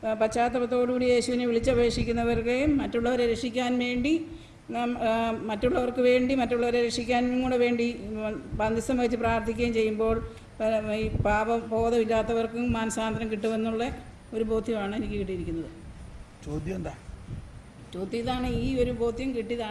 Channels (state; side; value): identical; both; correlation 1.00